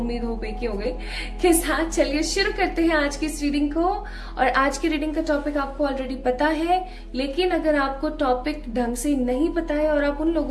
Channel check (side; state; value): both; identical; correlation 1.00